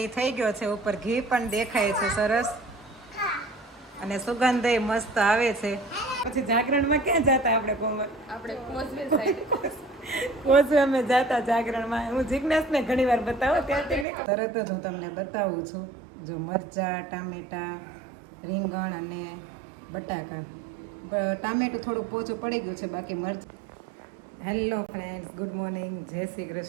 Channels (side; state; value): left; drops out; at 14.1 s